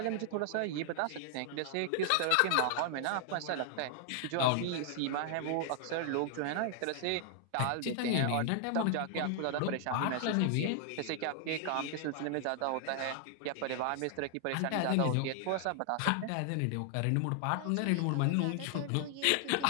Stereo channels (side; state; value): both; different; correlation 0.00